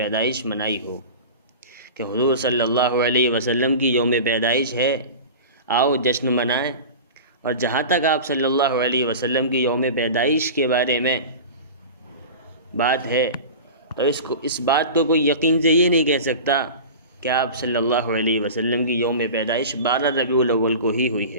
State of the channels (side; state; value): both; inverted; correlation -0.33